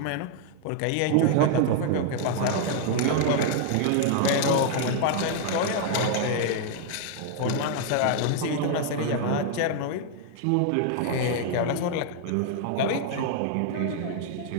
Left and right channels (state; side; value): different; both; correlation 0.00